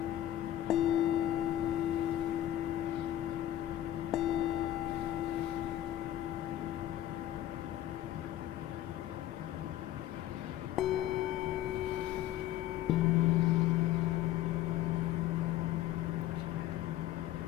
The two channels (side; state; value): right; quieter; 13.0 dB